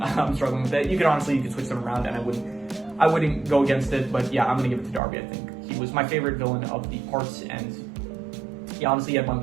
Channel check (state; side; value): drops out; left; at 5.0 s